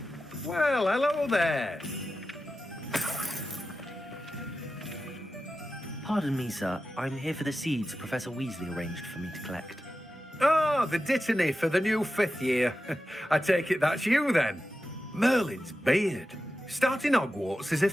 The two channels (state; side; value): normal; both; correlation 0.92